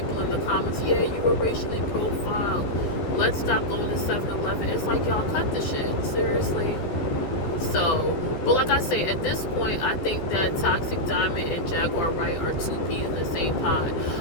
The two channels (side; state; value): right; late; 14 ms